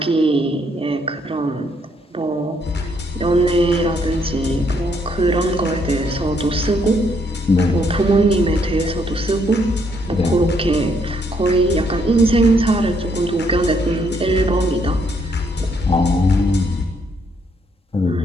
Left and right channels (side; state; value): both; normal; correlation 0.72